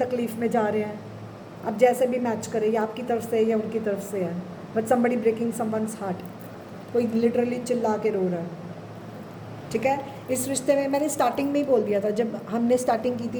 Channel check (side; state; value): both; identical; correlation 1.00